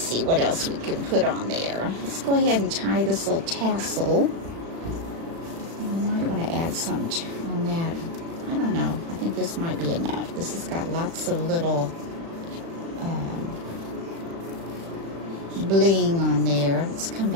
what else we can put on there. Let's go ahead and tie this little tassel. I might want to add some on that. I don't know. I think this might be enough. This has got lots of little bling on there. Let's come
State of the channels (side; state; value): left; late; 36 ms